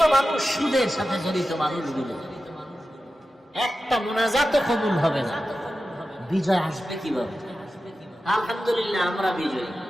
মানুষ, সুদের সাথে জড়িত মানুষগুলো, একটা মোনাজাতও কবুল হবে না। বিজয় আসবে কিভাবে? আলহামদুলিল্লাহ, আমরা বিজয়ী।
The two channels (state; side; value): normal; both; correlation 0.93